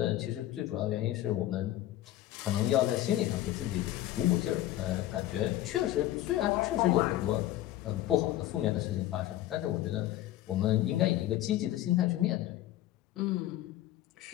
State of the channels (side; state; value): right; quieter; 14.2 dB